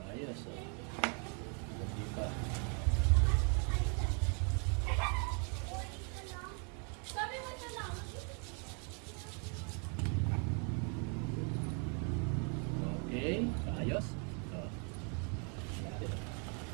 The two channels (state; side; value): quieter; left; 38.6 dB